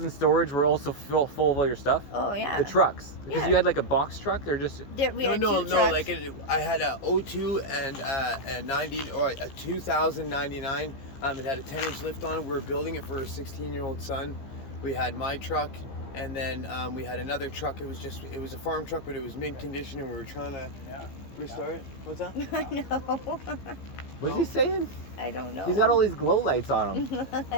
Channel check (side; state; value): right; late; 15 ms